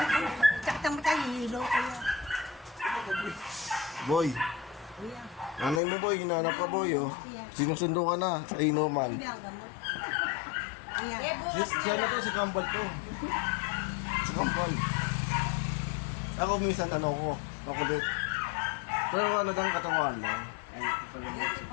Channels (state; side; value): drops out; right; at 5.8 s